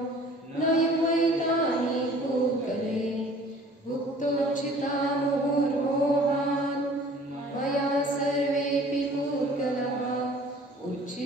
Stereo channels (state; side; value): normal; both; correlation 0.50